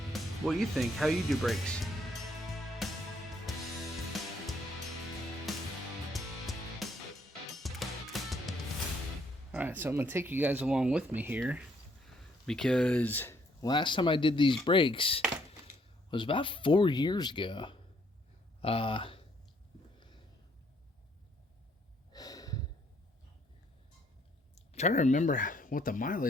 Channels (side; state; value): both; normal; correlation 0.68